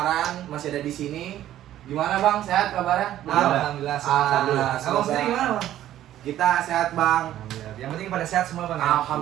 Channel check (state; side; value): quieter; left; 12.6 dB